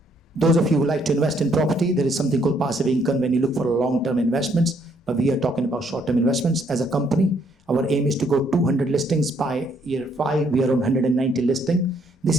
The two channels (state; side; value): normal; both; correlation 0.69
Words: those of you who like to invest in property, there is something called passive income when you look for long-term investments, but we are talking about short-term investments. As a company, our aim is to go 200 listings by year 5. We are on 190 listing. This